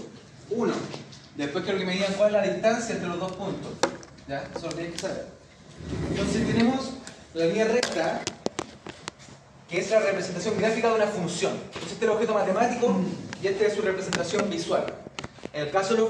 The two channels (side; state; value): both; identical; correlation 1.00